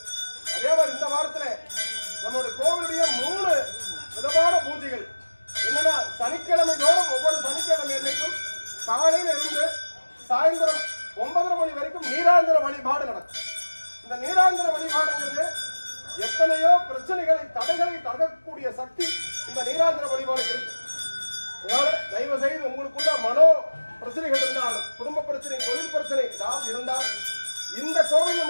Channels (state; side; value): inverted; both; correlation -1.00